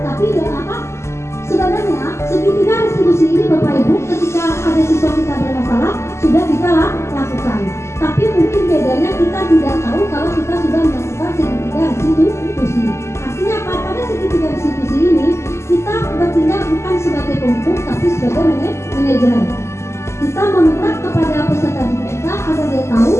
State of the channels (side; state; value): right; late; 0.13 ms